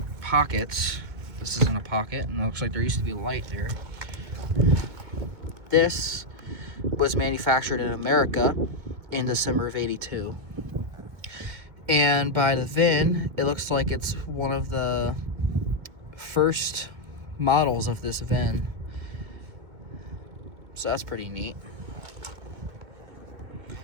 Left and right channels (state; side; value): late; left; 2.2 ms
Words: pockets. This isn't a pocket, and it looks like there used to be a light there. This was manufactured in America in December of '82. And by the VIN, it looks like it's one of the first models of this VIN. So that's pretty neat.